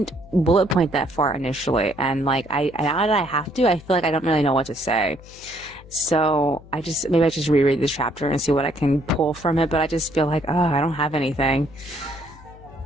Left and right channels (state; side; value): noise; left; hum, 21 dB below the sound